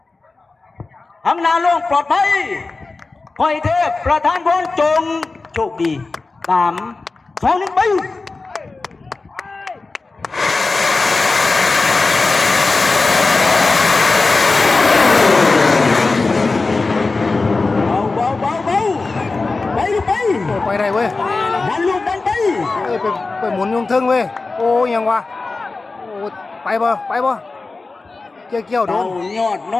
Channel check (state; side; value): quieter; right; 3.7 dB